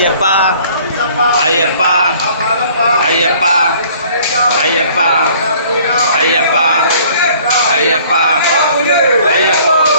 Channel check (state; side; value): inverted; both; correlation -0.55